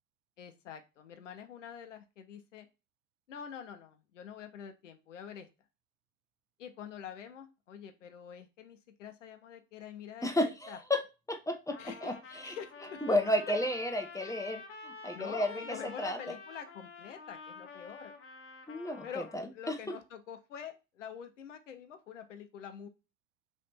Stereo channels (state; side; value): normal; both; correlation 0.53